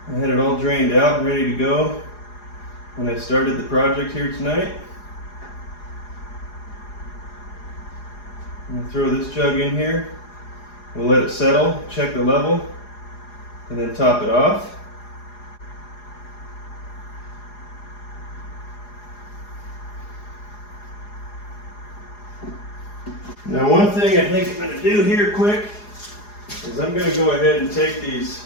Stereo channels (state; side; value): late; right; 4.8 ms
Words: I had it all drained out and ready to go when I started the project here tonight. I'm going to throw this jug in here. We'll let it settle, check the level, and then top it off. Now one thing I think I'm going to do here quick is I'm going to go ahead and take these